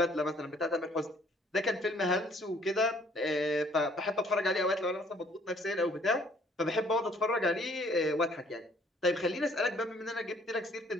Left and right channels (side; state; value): both; normal; correlation 0.61